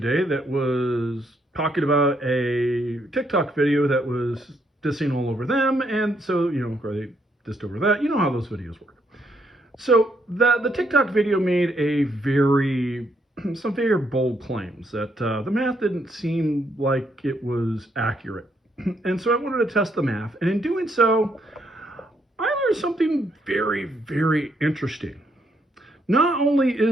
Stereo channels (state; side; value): normal; both; correlation 0.74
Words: that was talking about a TikTok video that was dissing all over them, and so or they dissed over that. You know how those videos work. So the TikTok video made some very bold claims that the math didn't seem like it was accurate, and so I wanted to test the math, and in doing so, I learned something very, very interesting. Not only